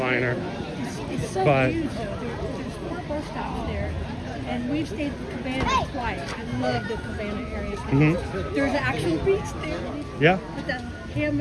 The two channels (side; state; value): both; identical; correlation 1.00